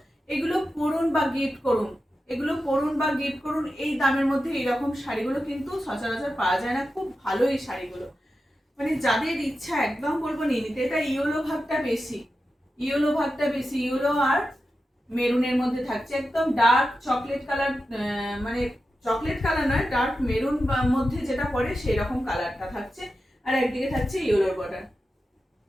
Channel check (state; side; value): normal; both; correlation 0.91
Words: এগুলো পরুন বা গিফট করুন, এগুলো পরুন বা গিফট করুন। এই দামের মধ্যে এইরকম শাড়িগুলো কিন্তু সচরাচর পাওয়া যায় না। খুব ভালো এই শাড়িগুলো, মানে যাদের ইচ্ছা একদম বলবো নিয়ে নিতে। এটা ইয়েলো ভাগটা বেশি, ইয়েলো ভাগটা বেশি, ইয়েলো আর মেরুনের মধ্যে থাকছে। একদম ডার্ক চকলেট কালার, মানে চকলেট কালার নয়, ডার্ক মেরুন মধ্যে যেটা পড়ে সেই রকম কালারটা থাকছে। আর একদিকে থাকছে ইয়েলোর বর্ডার।